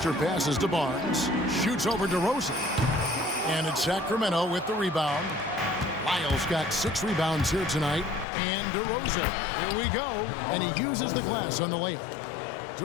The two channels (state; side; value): drops out; right; at 8.2 s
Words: passes to Barnes. Shoots over DeRozan. And it's Sacramento with the rebound. Lyles got 6 rebounds here tonight. And DeRozan. Here we go. And he uses the glass on the layup.